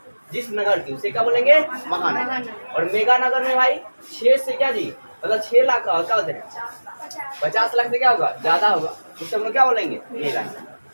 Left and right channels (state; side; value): inverted; both; correlation -1.00